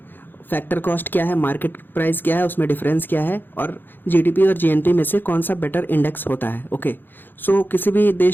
फैक्टर कॉस्ट क्या है, मार्केट प्राइस क्या है, उसमें डिफरेंस क्या है, और जीडीपी और जीएनपी में से कौन सा बेटर इंडेक्स होता है। ओके, सो किसी भी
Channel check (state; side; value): late; right; 0.095 ms